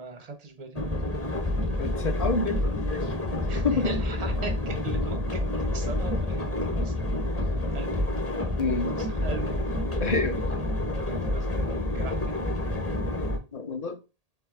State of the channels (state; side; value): late; left; 1.8 ms